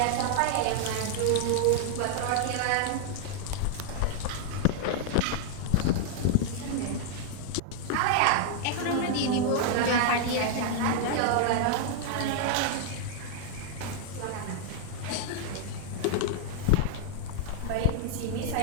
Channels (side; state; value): both; different; correlation -0.01